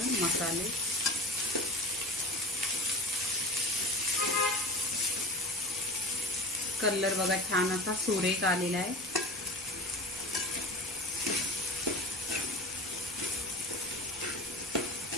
मसाले। कलर बघा छान असा सुरेख आलेला आहे।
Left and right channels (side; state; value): both; normal; correlation 0.34